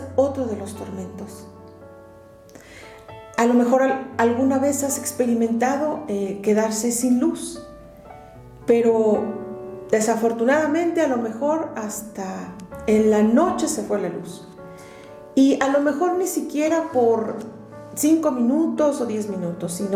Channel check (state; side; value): identical; both; correlation 1.00